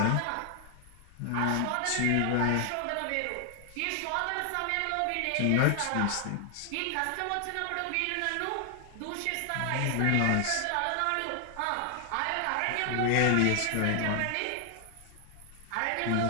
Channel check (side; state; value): both; different; correlation 0.00